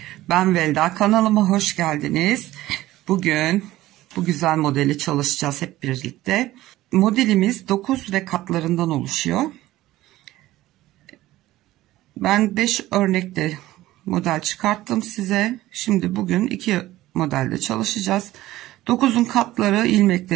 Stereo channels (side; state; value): left; quieter; 16.1 dB